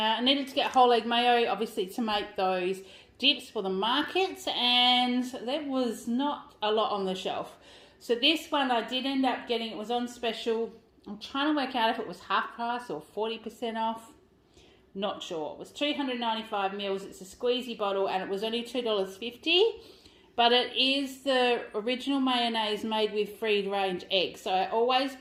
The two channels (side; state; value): both; identical; correlation 1.00